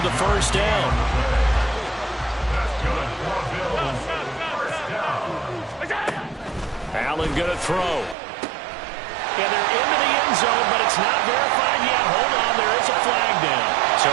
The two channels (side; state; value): left; drops out; at 8.2 s